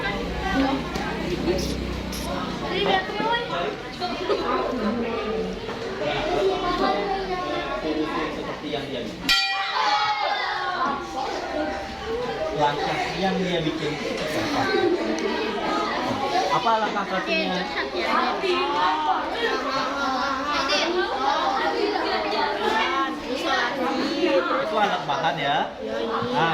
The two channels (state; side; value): identical; both; correlation 1.00